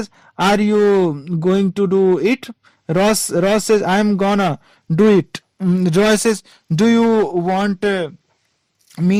are you going to do it? Ross says, I'm gonna do it. Joy says, do you want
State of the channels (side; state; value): both; identical; correlation 1.00